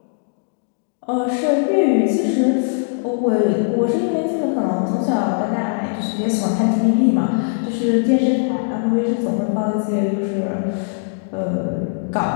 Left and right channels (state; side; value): silent; right; digital silence